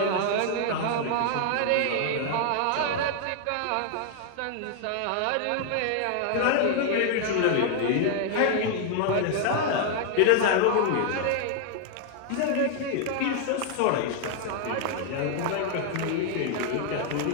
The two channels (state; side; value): different; both; correlation 0.00